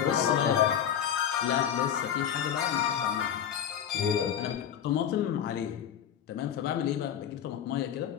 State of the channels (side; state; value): right; quieter; 9.2 dB